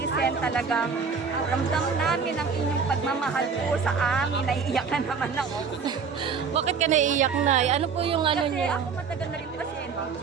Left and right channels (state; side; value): quieter; left; 5.7 dB